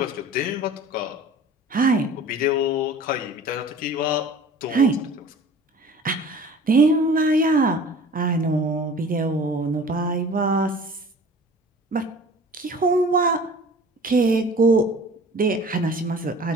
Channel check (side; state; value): both; normal; correlation 0.44